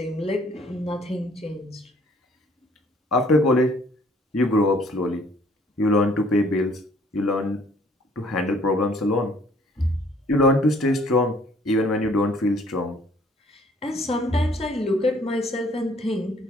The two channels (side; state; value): both; normal; correlation 0.59